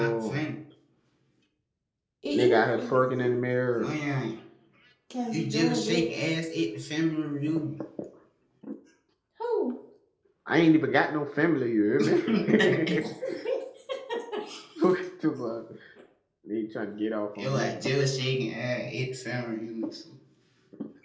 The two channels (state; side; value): identical; both; correlation 1.00